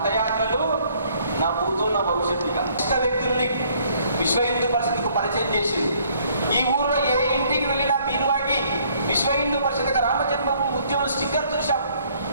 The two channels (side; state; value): both; inverted; correlation -0.63